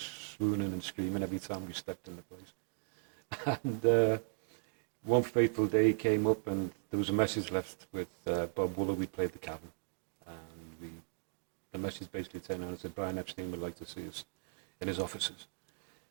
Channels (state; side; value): silent; left; 53 dB below the other